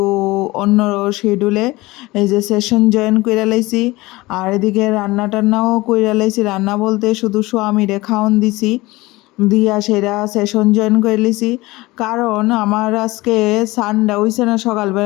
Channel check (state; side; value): quieter; right; 20.6 dB